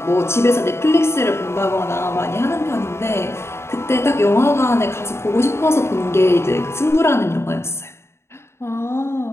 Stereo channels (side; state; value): right; late; 0.13 ms